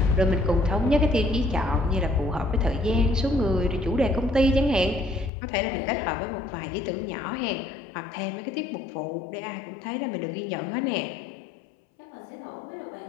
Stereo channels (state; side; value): drops out; right; at 5.3 s